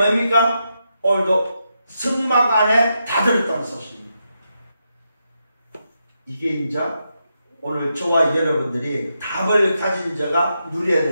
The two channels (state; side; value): inverted; both; correlation -0.84